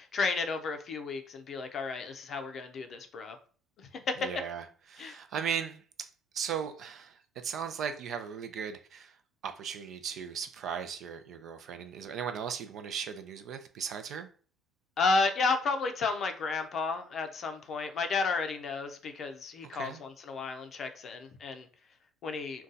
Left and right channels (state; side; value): normal; both; correlation 0.63